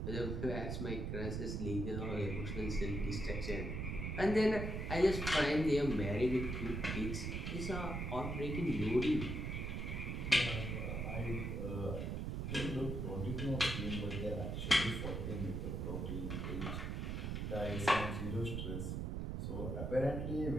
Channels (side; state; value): right; noise; rumble, 2 dB below the sound